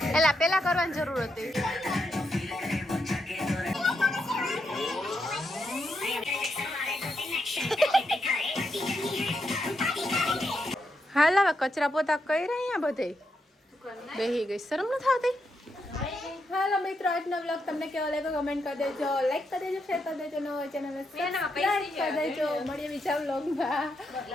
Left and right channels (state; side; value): normal; both; correlation 0.82